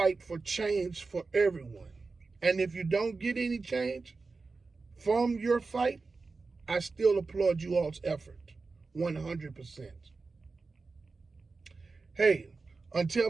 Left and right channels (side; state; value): left; quieter; 4.1 dB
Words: for change for everyone. And if you don't get any change from your fight, I still applaud you all's effort, 100%. Hey, until